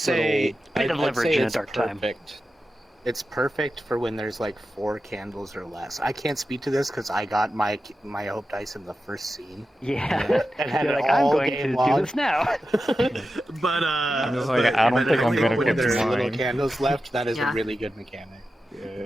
little bit of I'd leverage say in a it's dark time. perfect. It's perfect for when there's like 4 candles or less. I can't speak to this because I got my hope dice in the first scene. Yeah. And had You're it like, I'm all going to game do long. this now. But I'm just like, I don't think I'm gonna when get there's mine. little candles left, that is Yeah. a really good mechanic.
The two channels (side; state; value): both; normal; correlation 0.91